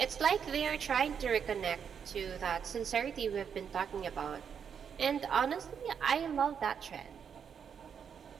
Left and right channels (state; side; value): quieter; left; 7.3 dB